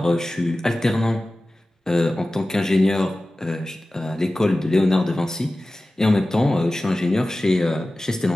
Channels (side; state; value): both; normal; correlation 0.96